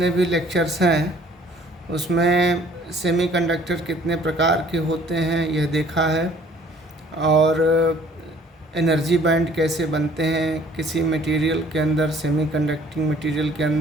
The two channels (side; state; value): both; normal; correlation 0.56